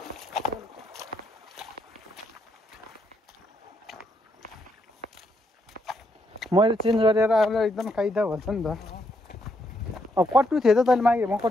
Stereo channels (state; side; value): normal; both; correlation 0.77